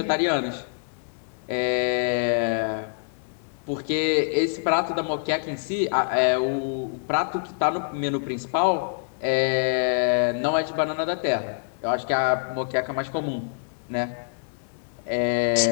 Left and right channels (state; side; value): silent; right; digital silence